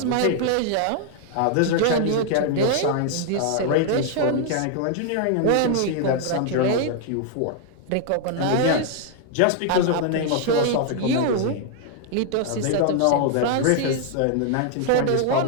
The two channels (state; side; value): different; both; correlation 0.00